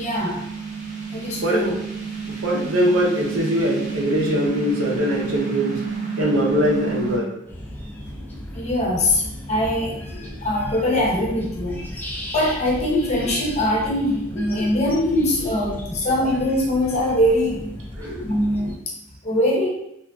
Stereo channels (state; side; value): normal; both; correlation 0.40